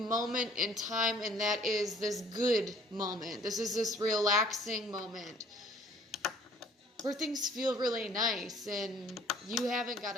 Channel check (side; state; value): both; normal; correlation 0.55